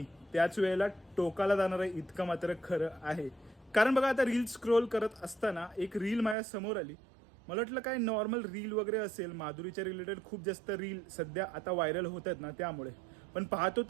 त्याच वेळेला टोकाला जाणार आहे इतकं मात्र खरं आहे. कारण बघा, आता रील स्क्रोल करत असताना एक रील माझ्या समोर आली. मला वाटलं काय नॉर्मल रील वगैरे असेल, माधुरीच्या रिलेटेड खूप जास्त रील सध्या आता व्हायरल होत आहेत ना, त्यामुळे. पण पाहतो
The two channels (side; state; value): left; drops out; at 6.4 s